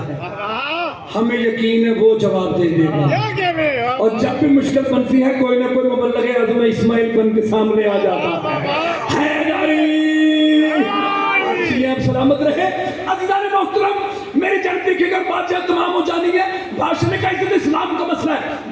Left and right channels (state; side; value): identical; both; correlation 1.00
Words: ہے، ہمیں یقین ہے وہ جواب دے دے گا. کیا کہہ رہے ہیں اور جب بھی مشکل بنتی ہے کوئی نہ کوئی مبلغ اعظم اسماعیل بن کے سامنے آ جاتا ہے. جی آپ سلامت رہے. عزیزان محترم میری جلدی کے اگر بادشاہ تمام ہو جانی ہے. بادشاہ نے کہا عزت اسلام کا مسئلہ ہے